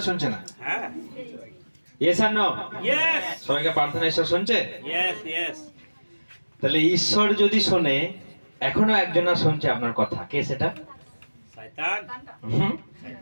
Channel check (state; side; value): inverted; both; correlation -1.00